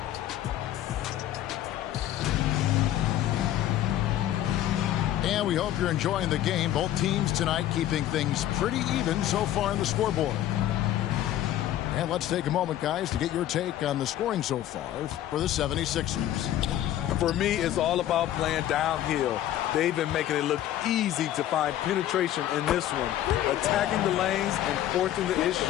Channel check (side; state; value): right; quieter; 12.6 dB